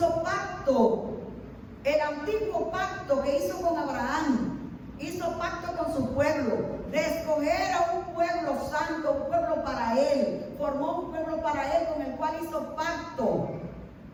pacto, el antiguo pacto que hizo con Abraham, hizo pacto con su pueblo, de escoger a un pueblo santo, un pueblo para él, formó un pueblo para él con el cual hizo pacto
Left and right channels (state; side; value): identical; both; correlation 1.00